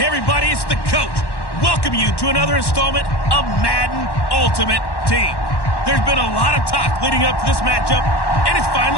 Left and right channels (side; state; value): right; late; 1.1 ms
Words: everybody, it's the coach. Welcome you to another installment of Madden Ultimate Team. There's been a lot of talk leading up to this matchup, and it's